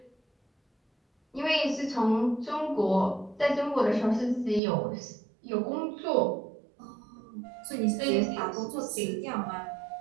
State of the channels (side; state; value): left; drops out; at 4.6 s